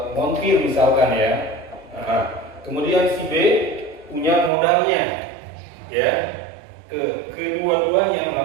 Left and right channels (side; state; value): left; drops out; at 4.5 s